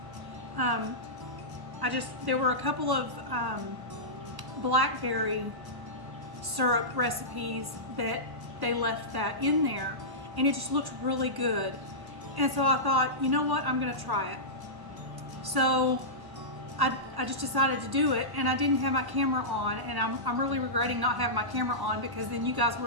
There were a couple of blackberry syrup recipes that they left that in there, and it just looked really good. And so I thought, you know what, I'm gonna try it. So I just decided to do it, and I didn't have my camera on, and I'm really regretting not having my camera on, because then you guys would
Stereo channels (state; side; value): late; left; 1.1 ms